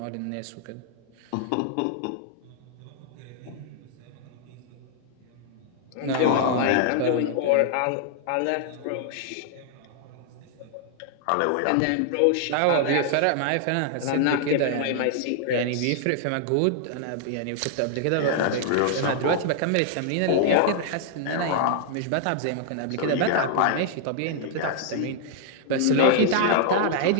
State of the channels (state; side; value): different; both; correlation -0.01